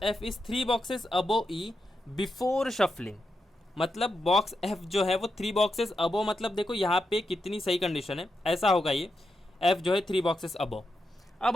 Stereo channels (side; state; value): both; normal; correlation 0.86